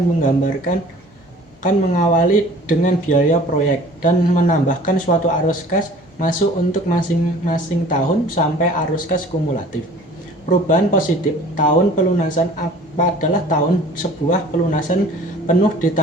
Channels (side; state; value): both; normal; correlation 0.48